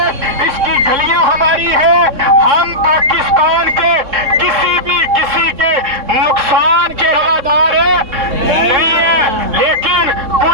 اس کی گلیاں ہماری ہے۔ ہم پاکستان کے کسی کے نقصان کے روادار نہیں ہیں، لیکن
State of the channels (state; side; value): late; left; 3.6 ms